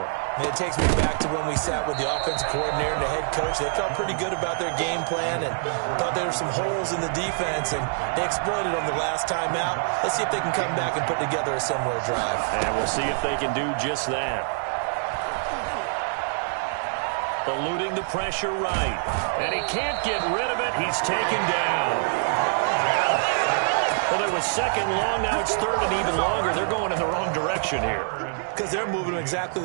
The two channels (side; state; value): left; silent; digital silence